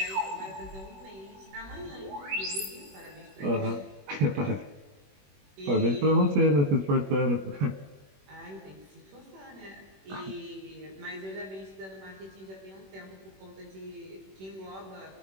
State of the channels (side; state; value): left; late; 21 ms